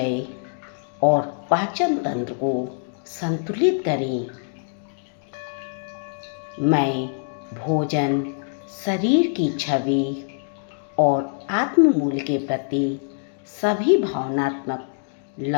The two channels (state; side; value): silent; right; digital silence